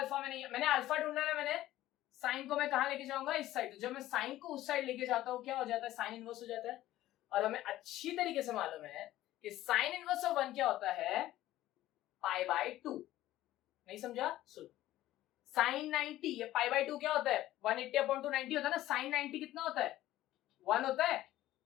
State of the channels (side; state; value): right; quieter; 14.8 dB